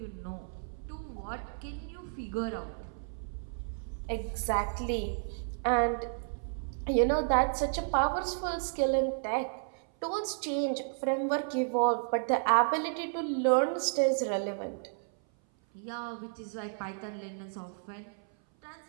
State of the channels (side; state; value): left; silent; 56 dB below the other